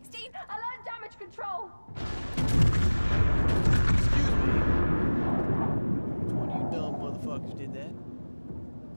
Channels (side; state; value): both; inverted; correlation -1.00